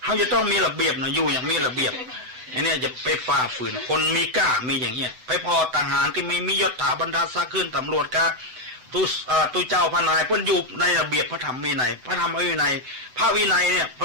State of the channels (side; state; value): left; late; 7.9 ms